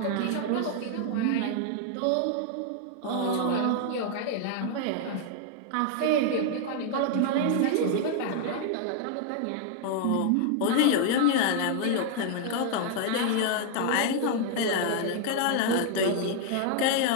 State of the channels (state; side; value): different; both; correlation 0.00